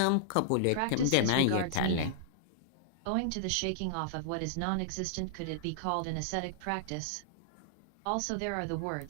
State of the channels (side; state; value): both; different; correlation -0.01